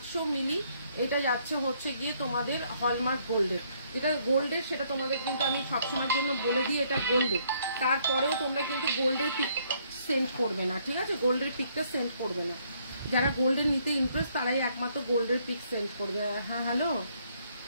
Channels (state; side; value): inverted; both; correlation -0.68